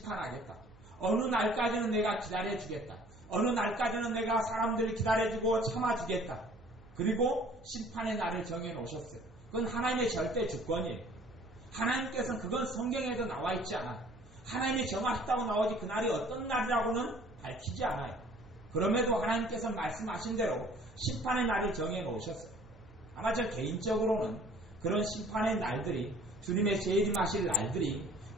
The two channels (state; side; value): noise; right; hum, 24 dB below the sound